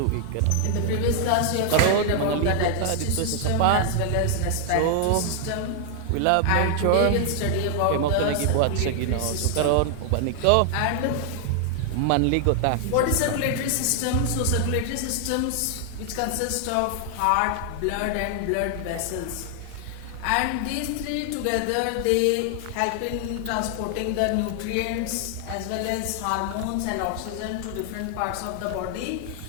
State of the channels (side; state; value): both; different; correlation 0.00